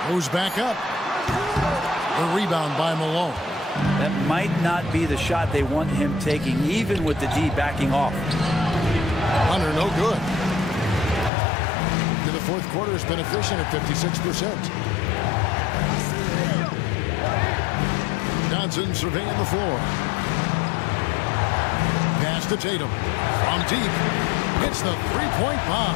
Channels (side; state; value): right; drops out; at 11.3 s